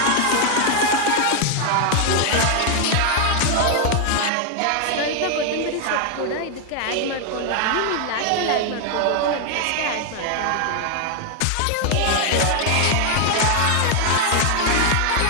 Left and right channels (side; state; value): both; different; correlation 0.00